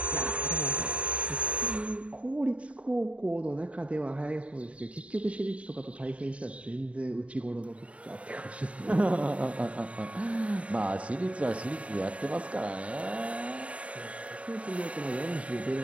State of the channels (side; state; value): left; late; 0.064 ms